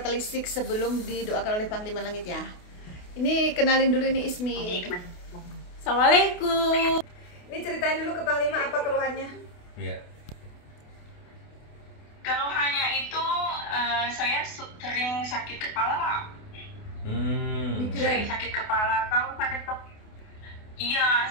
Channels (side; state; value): right; late; 28 ms